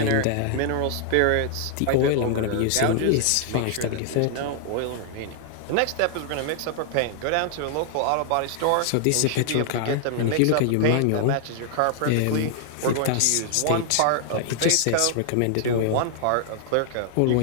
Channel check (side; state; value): both; different; correlation 0.00